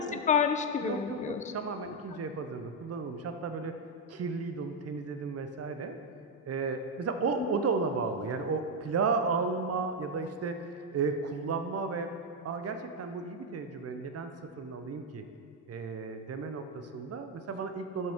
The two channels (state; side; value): normal; both; correlation 0.03